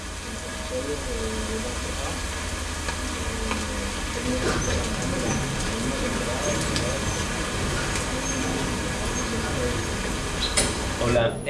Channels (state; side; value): identical; both; correlation 1.00